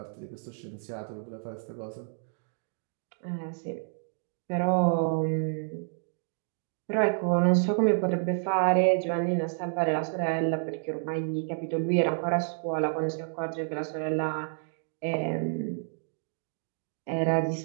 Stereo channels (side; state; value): left; silent; digital silence